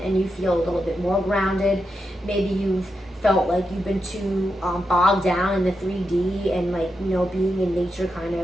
and you feel a little bit more grounded. Maybe you've felt like you've been too bogged down in the 3D, and like, you know, being in nature kind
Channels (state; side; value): normal; both; correlation 0.86